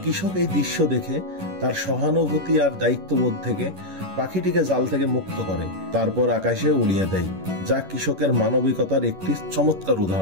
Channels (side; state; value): left; late; 11 ms